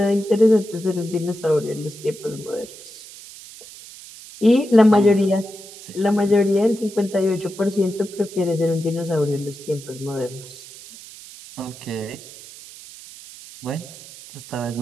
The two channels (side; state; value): right; noise; hiss, 17 dB below the sound